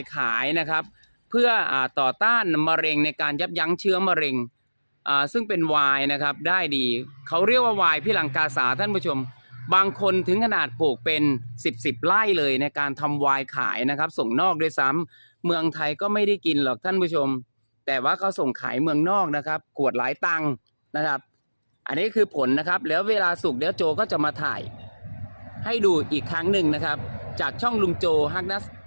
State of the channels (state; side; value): inverted; both; correlation -1.00